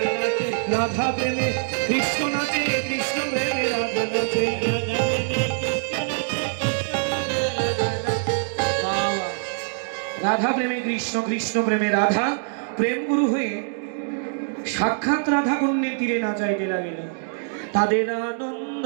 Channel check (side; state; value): left; silent; digital silence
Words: রাধা প্রেমে কৃষ্ণ নাচে, কৃষ্ণ প্রেমে রাধা নাচে, রাধা প্রেমে কৃষ্ণ, কৃষ্ণ প্রেমে রাধা, প্রেম গুরু হয়ে সাক্ষাৎ রাধা কুণ্ডের তীরে নাচাইতে লাগিল। তাদের আনন্দ